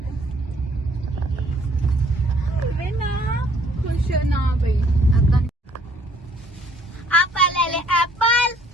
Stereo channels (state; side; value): normal; both; correlation 0.61